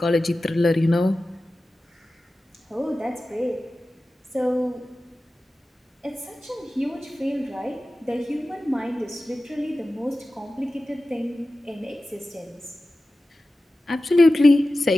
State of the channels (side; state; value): both; normal; correlation 0.95